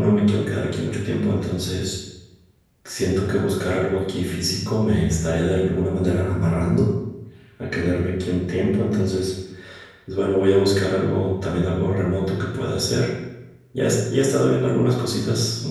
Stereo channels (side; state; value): both; identical; correlation 1.00